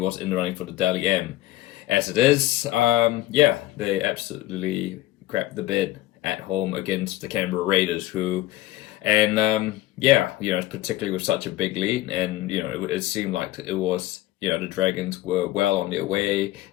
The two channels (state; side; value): quieter; right; 16.1 dB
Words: in the running for the Daly M. As it is, they absolutely crapped the bed at home against the Canberra Raiders, particularly with such a big lead, and it seemed like it was the Dragons were well on their way.